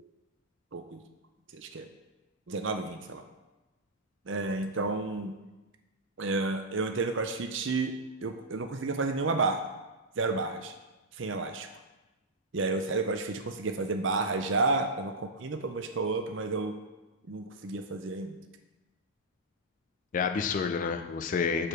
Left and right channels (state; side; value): normal; both; correlation -0.05